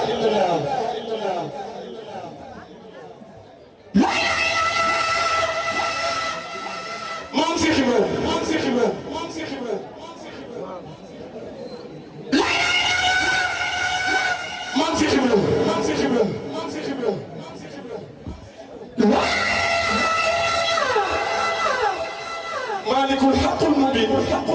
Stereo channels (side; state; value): both; identical; correlation 1.00